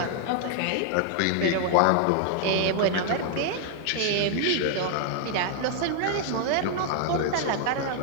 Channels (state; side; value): different; both; correlation 0.00